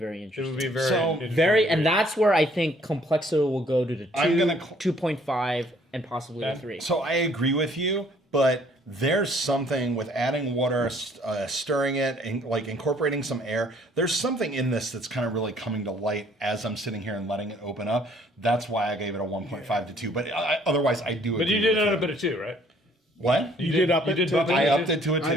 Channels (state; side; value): normal; both; correlation 0.61